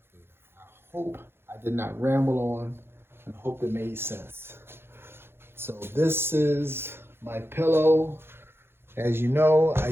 I hope I did not ramble on, and hope it made sense. So this is my pillow. As you know, I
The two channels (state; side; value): late; left; 0.11 ms